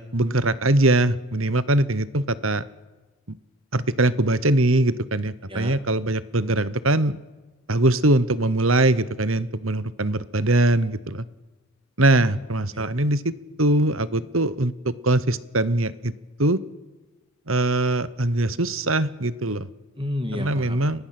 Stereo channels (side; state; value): both; normal; correlation 0.45